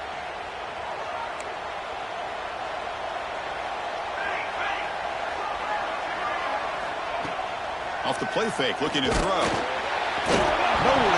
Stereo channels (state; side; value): identical; both; correlation 1.00